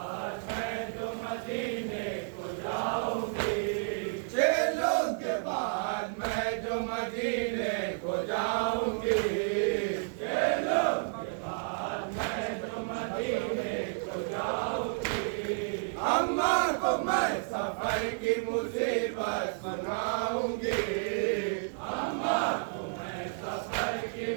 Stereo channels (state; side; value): silent; left; digital silence